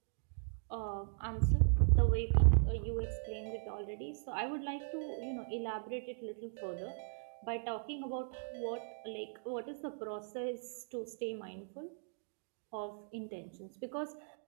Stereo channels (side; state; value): left; silent; digital silence